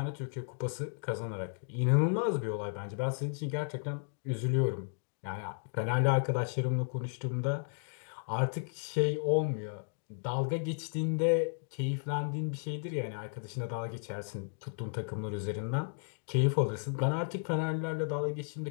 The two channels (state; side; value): silent; right; digital silence